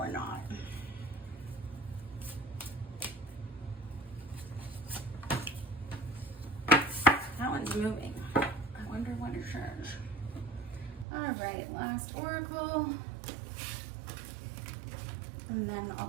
not? That one's moving. I wonder what it says. All right, last oracle. And then I'll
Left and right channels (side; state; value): left; drops out; at 11.1 s